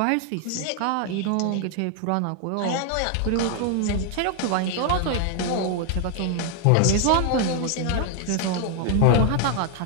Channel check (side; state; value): both; different; correlation 0.00